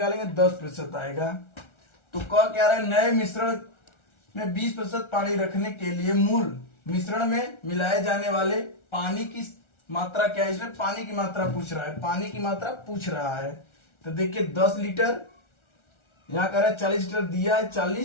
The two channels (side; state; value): right; late; 1.4 ms